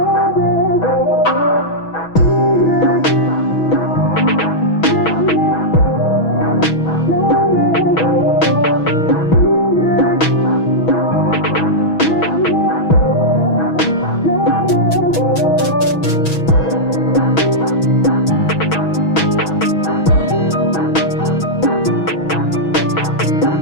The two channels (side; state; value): right; late; 6.2 ms